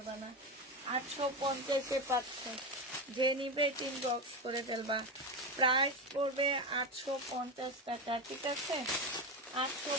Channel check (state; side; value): normal; both; correlation 0.17